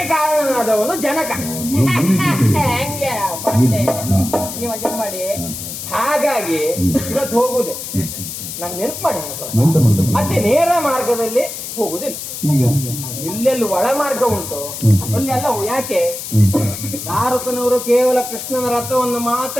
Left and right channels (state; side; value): noise; left; hiss, 8 dB below the sound